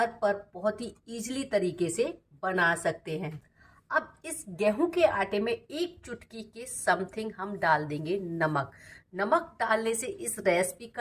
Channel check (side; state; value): both; identical; correlation 1.00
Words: पर बहुत ही इजीली तरीके से बना सकते हैं। अब इस गेहूं के आटे में 1 चुटकी के समथिंग हम डाल देंगे नमक। नमक डालने से इस रेसिपी